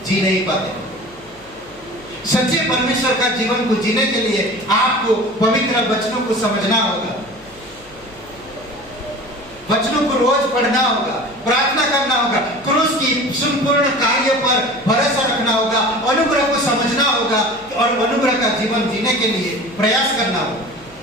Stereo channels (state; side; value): noise; left; hum, 26 dB below the sound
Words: जी नहीं पाते। सच्चे परमेश्वर का जीवन को जीने के लिए आपको पवित्र वचनों को समझना होगा, वचनों को रोज पढ़ना होगा, प्रार्थना करना होगा, क्रूस की संपूर्ण कार्य पर भरोसा रखना होगा, अनुग्रह को समझना होगा और अनुग्रह का जीवन जीने के लिए प्रयास करना होगा।